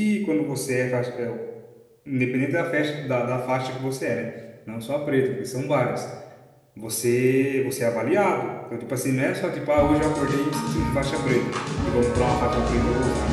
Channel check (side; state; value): both; identical; correlation 1.00